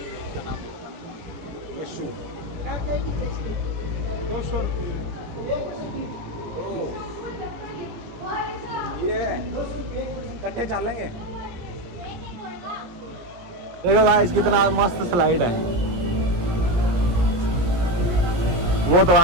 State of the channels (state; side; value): late; left; 17 ms